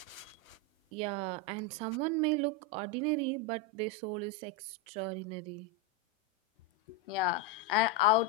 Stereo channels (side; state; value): both; normal; correlation 0.05